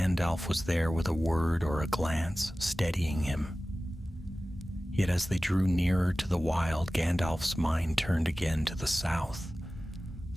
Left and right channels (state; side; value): normal; both; correlation 0.96